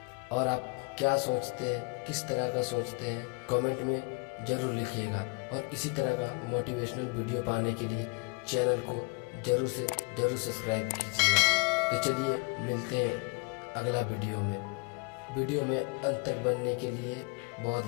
और आप क्या सोचते हैं, किस तरह का सोचते हैं, कमेंट में ज़रूर लिखिएगा। और इसी तरह का मोटिवेशनल वीडियो पाने के लिए चैनल को ज़रूर से ज़रूर सब्सक्राइब कीजिएगा। तो चलिए मिलते हैं अगला वीडियो में। वीडियो में अंत तक बनने के लिए बहुत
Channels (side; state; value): right; quieter; 30.5 dB